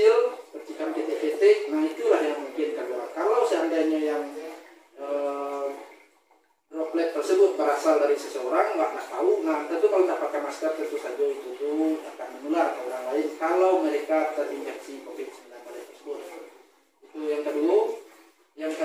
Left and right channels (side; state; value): both; identical; correlation 1.00